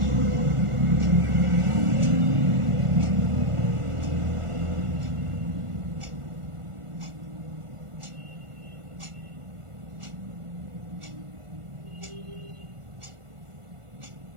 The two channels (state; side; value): late; left; 1.4 ms